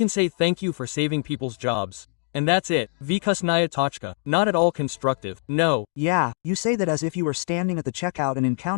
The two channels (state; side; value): silent; right; 63 dB below the other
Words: say thank you for saving people's jobs. And that's it. Vikusnaya Tochka. Not at all constructive. No. Yeah, you say that as if you were standing at the checkout and